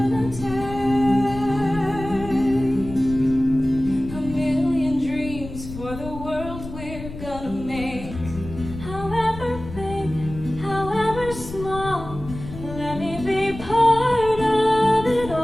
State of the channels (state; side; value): noise; left; rumble, 12 dB below the sound